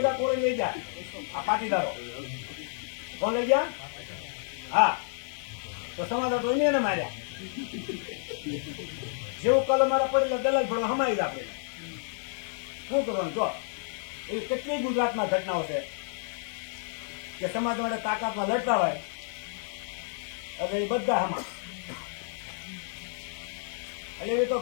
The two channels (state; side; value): silent; right; 58 dB below the other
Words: કોણ લઈ જાય? આ પાટીદારો કોણ લઈ ગયા? હા, તો સમાધાન તો એને માર્યા. જેવું કલમ મારા પડેલા દલાલ ભરવા હમાઈ જ આપણે શું કરવાનું? જો એવી કેટલી ગુજરાતમાં ઘટનાઓ છે કે સમાજ માટે તાકાતમાં લડતા હોય એટલે એ બધા હમા. એટલે એવી તો